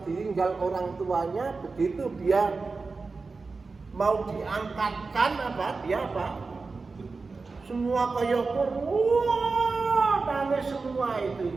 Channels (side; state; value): left; quieter; 4.1 dB